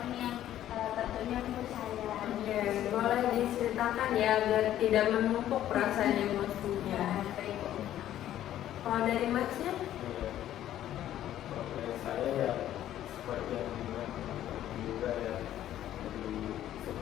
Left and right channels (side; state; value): right; quieter; 12.2 dB